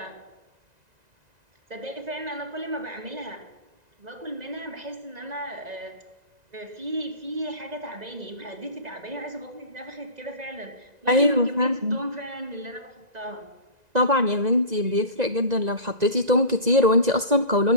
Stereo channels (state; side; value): late; left; 2.0 ms